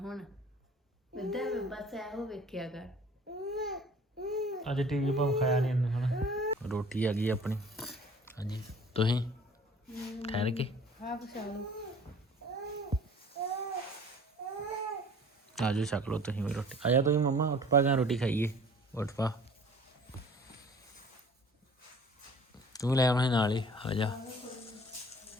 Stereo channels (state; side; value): normal; both; correlation 0.49